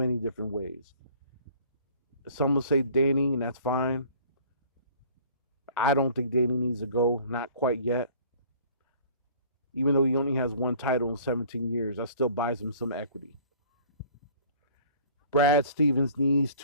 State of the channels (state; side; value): inverted; both; correlation -0.51